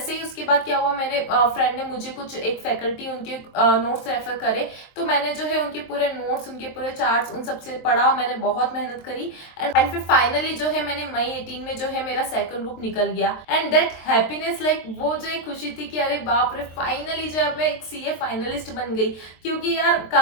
ही उसके बाद क्या हुआ, मेरे फ्रेंड ने मुझे कुछ एक फैकल्टी उनके नोट्स रेफर करे, तो मैंने जो है उनके पूरे नोट्स, उनके पूरे चार्ट्स, उन सबसे पढ़ा, मैंने बहुत मेहनत करी एंड फिर फाइनली जो है मैंने मई 18 में जो है मेरा सेकंड ग्रुप निकल गया। एंड दैट हैप्पीनेस, लाइक वो जो एक खुशी थी कि अरे बाप रे फाइनली जो है मैं एक CA फाइनलिस्ट बन गई। क्योंकि यार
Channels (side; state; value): right; late; 23 ms